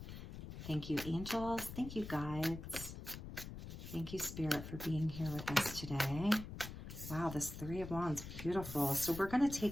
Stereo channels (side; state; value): left; noise; rumble, 10 dB below the sound